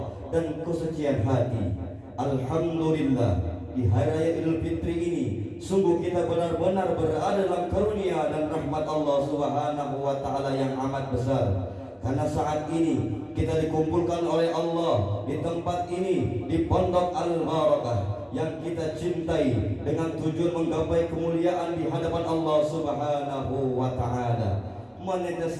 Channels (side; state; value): both; identical; correlation 1.00